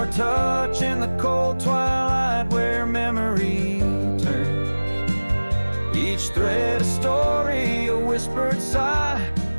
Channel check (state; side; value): inverted; both; correlation -1.00